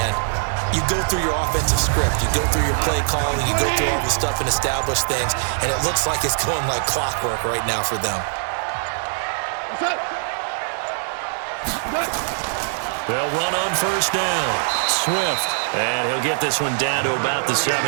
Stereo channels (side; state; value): left; silent; digital silence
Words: you go through your offensive script. You go through your play calling. You go through all the stuff and establish things. And it looks like it's going like clockwork right now for them. They'll run on first down. Swift, and he'll get this one down to about the